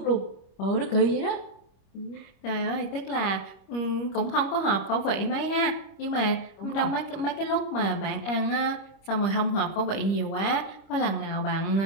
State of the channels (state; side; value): late; right; 25 ms